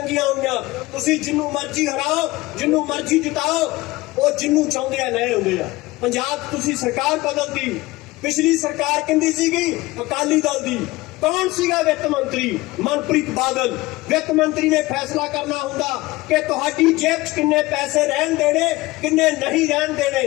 होईयां। तुसीं जिन्नू मर्जी हराओ, जिन्नू मर्जी जिताओ, वो जिन्नू चाहुंदे आ ले आउंदे आ। पंजाब तुसीं सरकार बदलदी, पिछली सरकार किंदी सीगी? अकाली दल दी। कौन सीगा वित्त मंत्री? मनप्रीत बादल। वित्त मंत्री ने फैसला करना हुंदा कि तुहाडी जेब च किन्ने पैसे रहन देने, किन्ने नहीं रहन देने।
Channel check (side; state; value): right; quieter; 20.1 dB